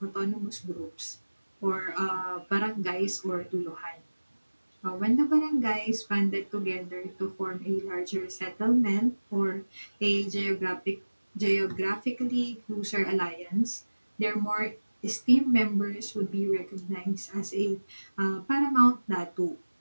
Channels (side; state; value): both; inverted; correlation -1.00